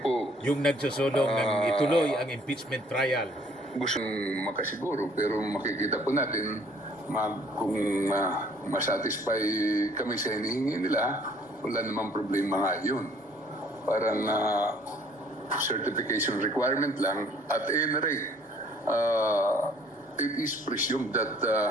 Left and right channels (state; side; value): normal; both; correlation 0.58